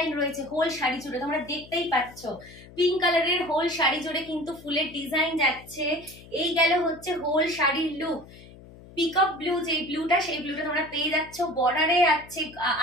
রয়েছে হোল শাড়ি জুড়ে, তোমরা দেখতেই পাচ্ছ পিঙ্ক কালারের হোল শাড়ি জুড়ে কিন্তু ফুলের ডিজাইন যাচ্ছে। এই গেল হচ্ছে হোল শাড়ির লুক। পিকক ব্লু যে ব্লুটা, সেই ব্লুটা তোমরা পেয়ে যাচ্ছ। বর্ডারে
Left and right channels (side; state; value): left; noise; hum, 20 dB below the sound